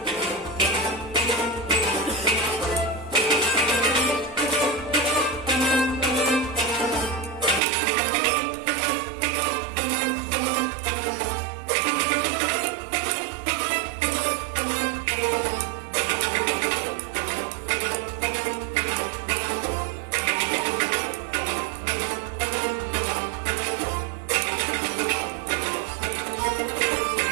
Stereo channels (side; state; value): left; drops out; at 7.6 s